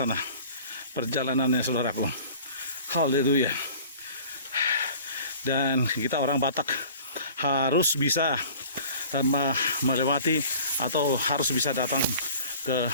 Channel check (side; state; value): both; inverted; correlation -0.46